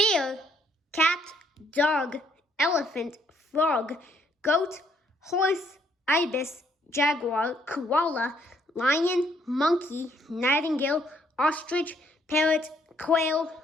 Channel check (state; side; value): normal; both; correlation 0.68